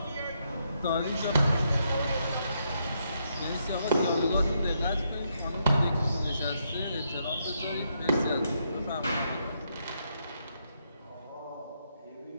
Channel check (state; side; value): inverted; both; correlation -0.78